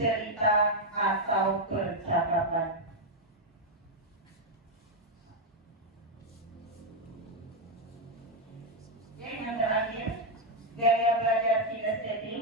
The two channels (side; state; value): both; normal; correlation 0.02